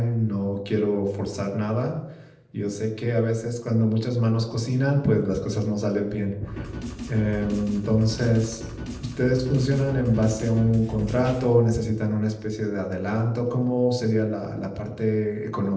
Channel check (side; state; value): both; identical; correlation 1.00